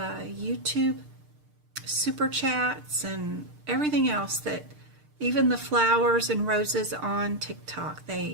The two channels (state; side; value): late; left; 6.6 ms